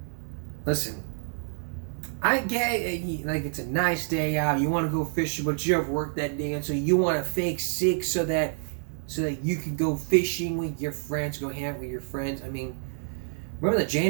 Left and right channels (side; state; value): left; silent; digital silence